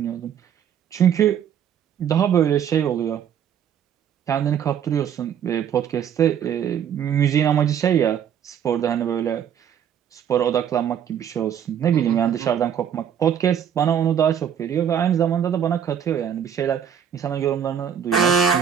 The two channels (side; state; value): left; quieter; 8.7 dB